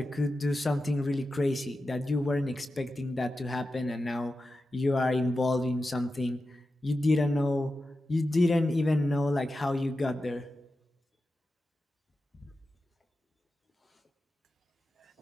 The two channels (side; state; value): both; normal; correlation 0.92